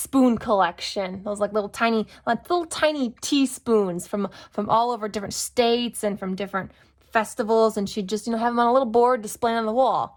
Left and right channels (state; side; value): identical; both; correlation 1.00